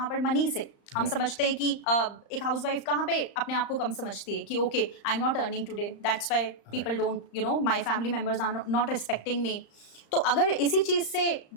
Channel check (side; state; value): right; late; 35 ms